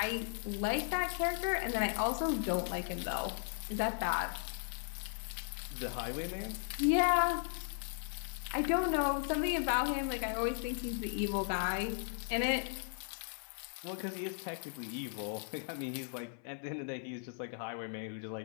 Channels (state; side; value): silent; right; 53 dB below the other